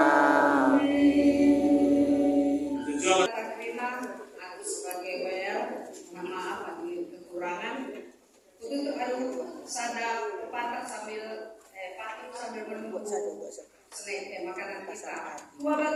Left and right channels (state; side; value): identical; both; correlation 1.00